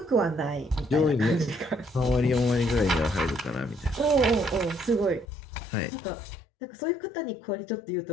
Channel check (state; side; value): drops out; right; at 5.2 s